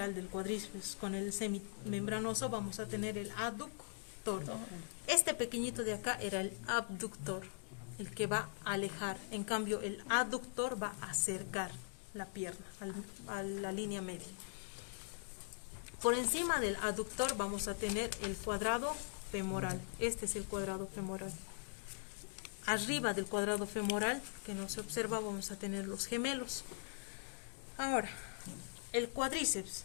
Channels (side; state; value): right; silent; digital silence